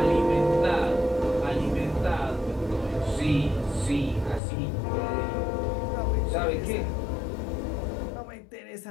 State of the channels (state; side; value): drops out; right; at 4.4 s